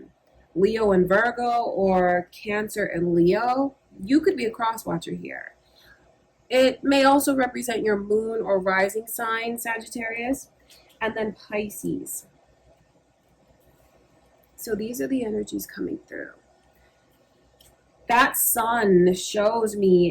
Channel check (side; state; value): both; identical; correlation 1.00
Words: Leo and Virgo, or Cancer and Leo. You could be a cross watcher here. It may also represent your moon or rising sign, Sagittarius, and then Pisces. So these are the energies coming through. That sun shows